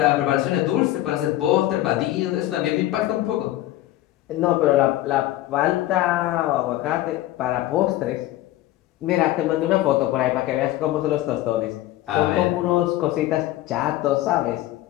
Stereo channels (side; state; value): right; quieter; 15.2 dB